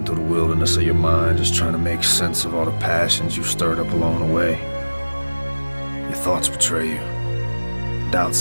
through the wilderness of your mind, just trying to make sense of all the passions you've stirred up along the way. Your thoughts betray you. Doubt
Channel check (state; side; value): inverted; both; correlation -1.00